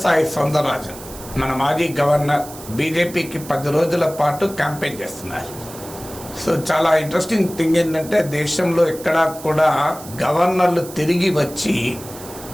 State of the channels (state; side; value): noise; right; hiss, 16 dB below the sound